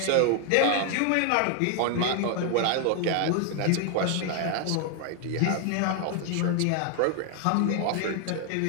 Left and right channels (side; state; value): both; different; correlation 0.00